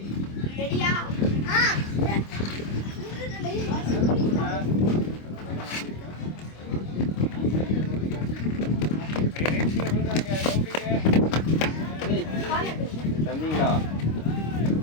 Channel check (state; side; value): late; right; 25 ms